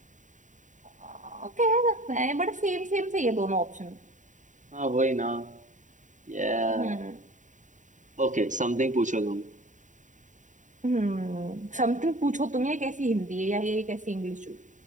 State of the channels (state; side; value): late; left; 0.36 ms